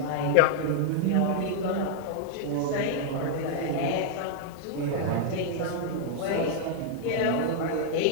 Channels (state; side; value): different; both; correlation -0.01